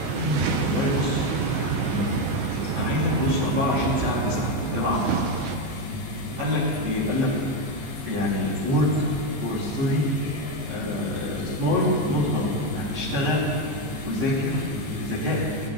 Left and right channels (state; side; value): late; left; 14 ms